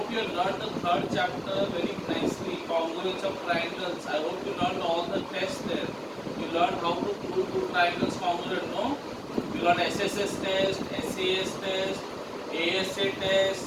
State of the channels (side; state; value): both; identical; correlation 1.00